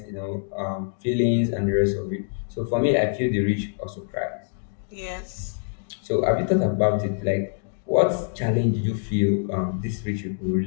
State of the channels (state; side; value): silent; right; digital silence